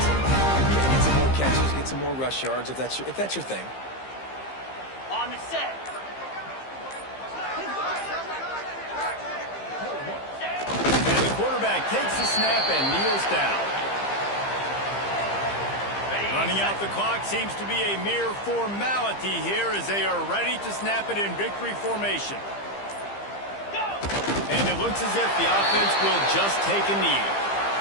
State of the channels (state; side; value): late; right; 15 ms